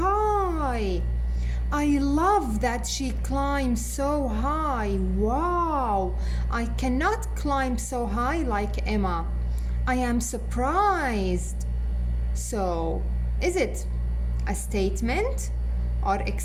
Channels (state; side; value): identical; both; correlation 1.00